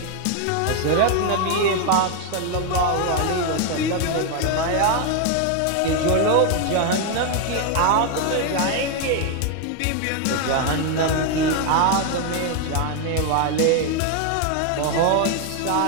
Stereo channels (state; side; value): different; both; correlation 0.01